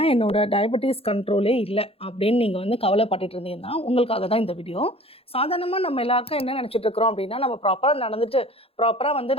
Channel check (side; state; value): right; late; 0.28 ms